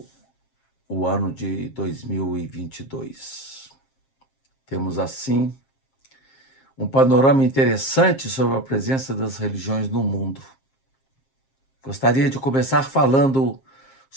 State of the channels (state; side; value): late; right; 7.5 ms